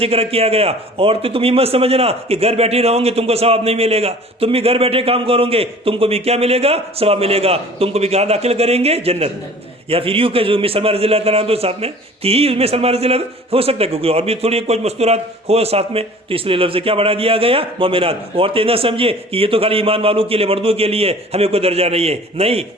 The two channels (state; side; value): normal; both; correlation 0.46